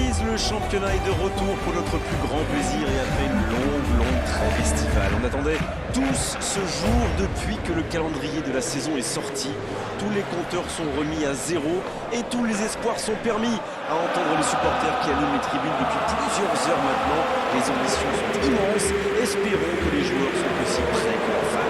le championnat est de retour pour notre plus grand plaisir et après une longue trêve estivale. On attendait tous ce jour depuis que le calendrier de la saison est sorti. Tous les compteurs sont remis à zéro et tous les espoirs sont permis. À entendre les supporters qui allument les tribunes depuis plusieurs heures maintenant, les ambitions sont immenses. Espérons que les joueurs sont aussi prêts que leurs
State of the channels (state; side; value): identical; both; correlation 1.00